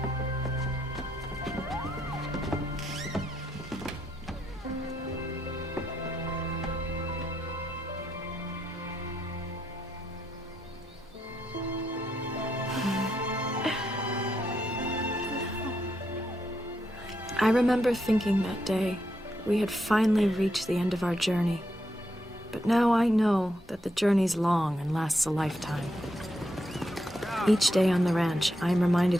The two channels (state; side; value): normal; both; correlation 0.80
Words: I remember thinking that day we had finally reached the end of our journey. But now I know that the journey's long and lasts a lifetime. Each day on the ranch, I am